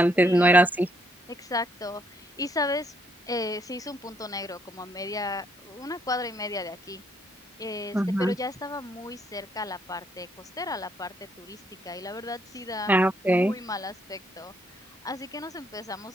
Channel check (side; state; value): both; normal; correlation 0.71